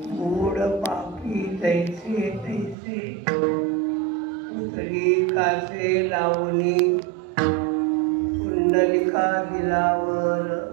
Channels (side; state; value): left; drops out; at 2.8 s